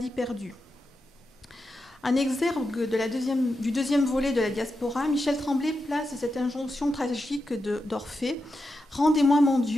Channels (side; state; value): both; normal; correlation 0.88